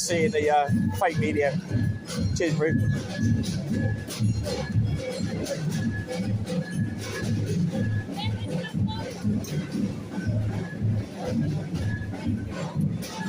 and the fake media. Cheers, bro.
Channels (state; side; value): identical; both; correlation 1.00